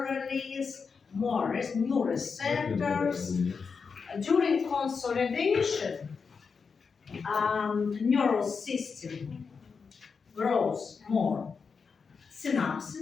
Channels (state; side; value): quieter; right; 5.4 dB